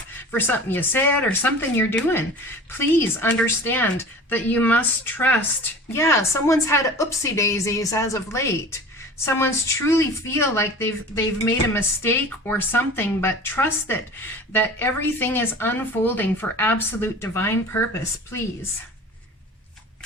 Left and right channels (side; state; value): both; normal; correlation 0.39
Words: for something you said or something you're doing, please understand that you must trust. Yeah, someone's had oopsie daisies as of late. Someone's truly feel like they've made a mistake or something, but trust that everything is unfolding for absolute divine purpose, please.